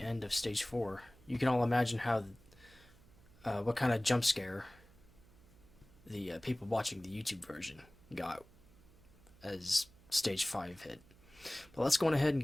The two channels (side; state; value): right; noise; hum, 25 dB below the sound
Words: end of stage 4. You can all imagine how, what kind of jump scare the people watching the YouTube version got as stage 5 hit. But let's go on ahead and